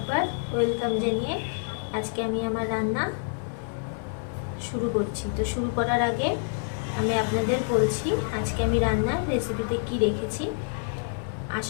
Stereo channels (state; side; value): silent; right; digital silence